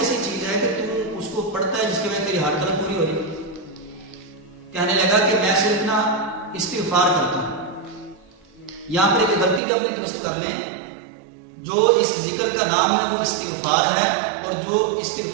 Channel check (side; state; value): left; drops out; at 9.6 s